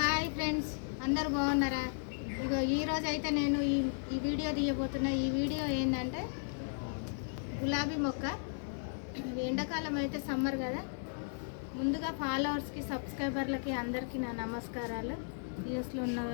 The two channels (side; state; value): right; silent; digital silence